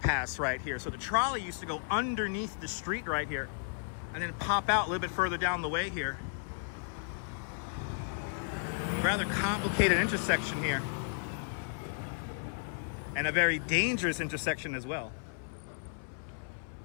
right here. So the trolley used to go underneath the street right here and then pop out a little bit further down the way here. Rather complicated intersection here. And a very dangerous intersection as well.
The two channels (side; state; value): right; silent; 55 dB below the other